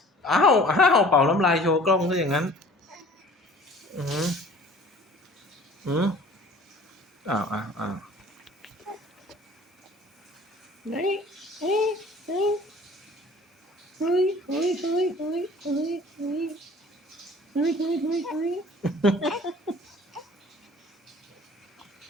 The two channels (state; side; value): normal; both; correlation 0.48